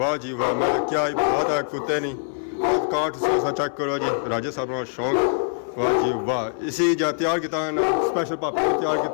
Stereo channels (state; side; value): silent; right; 59 dB below the other